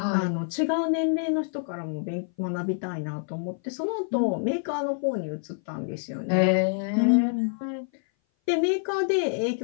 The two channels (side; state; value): right; silent; 57 dB below the other